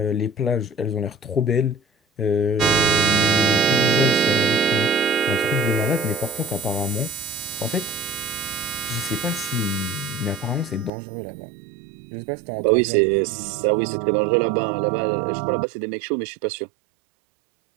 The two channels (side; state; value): left; drops out; at 10.9 s